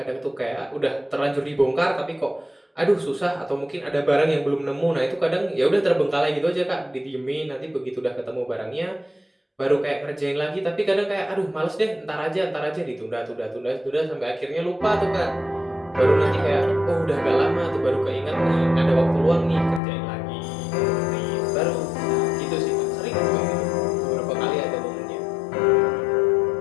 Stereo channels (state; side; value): drops out; right; at 19.8 s